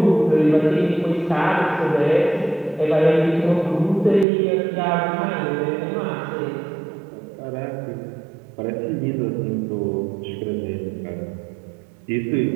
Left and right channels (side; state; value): left; drops out; at 4.2 s